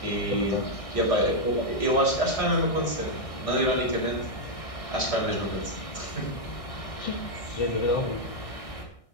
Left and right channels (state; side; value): late; right; 1.6 ms